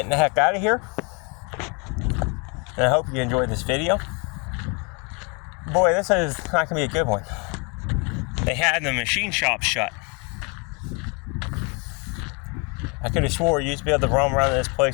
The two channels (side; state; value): right; quieter; 32.7 dB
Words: the heck out of here. And I hope you enjoyed this video. Boy, this is not going to be a good one. They had the machine shop shut. I could have swore you used to be able to roam around this